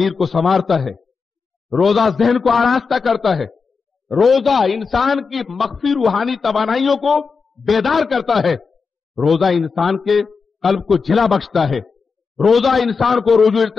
کو سنوارتا ہے, روزہ ذہن کو آراستہ کرتا ہے, روزہ انسان کی مخفی روحانی توانائیوں کو بیدار کرتا ہے, روزہ انسان کے قلب کو جلا بخشتا ہے, روزہ انسان کو رجوع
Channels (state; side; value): quieter; right; 5.0 dB